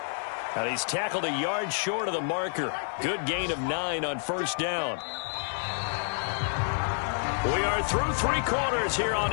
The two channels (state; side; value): silent; right; digital silence